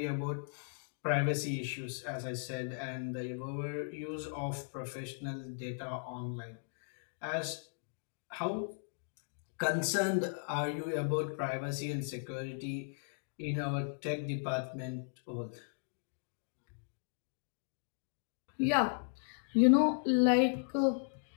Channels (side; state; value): right; silent; digital silence